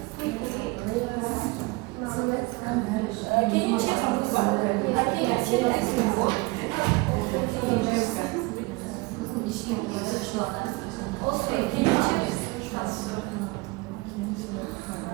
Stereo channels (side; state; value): left; quieter; 24.7 dB